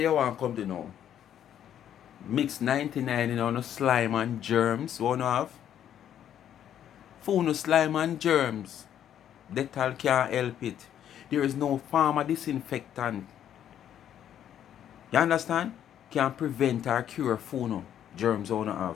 want come to now? Mix 99 in on slime and germs. Wanna have? Phone slime and germs. Dettol can't help it. There is no pharma disinfectant. You understand? Can prevent or cure phone germs wanna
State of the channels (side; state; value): right; quieter; 10.2 dB